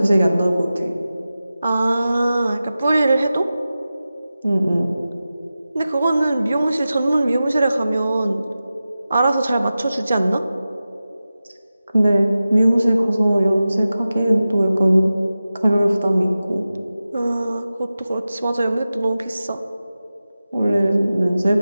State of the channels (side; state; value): both; inverted; correlation -0.94